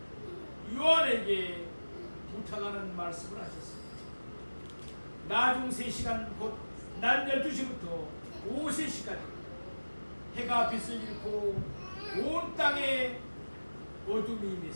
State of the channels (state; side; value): inverted; both; correlation -1.00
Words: 요한에게 부탁하는 말씀을 하셨습니다. 나중 3시간 곧 낮 12시부터 오후 3시까지 해가 빛을 잃고 온 땅에 어둠이